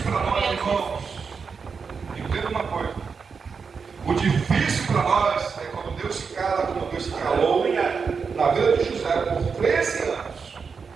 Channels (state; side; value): quieter; left; 5.6 dB